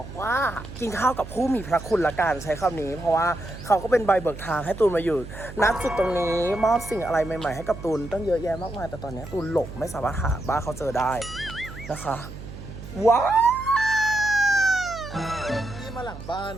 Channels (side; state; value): right; noise; hum, 13 dB below the sound